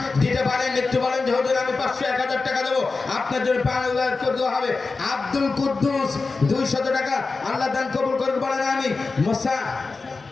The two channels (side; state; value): right; quieter; 4.0 dB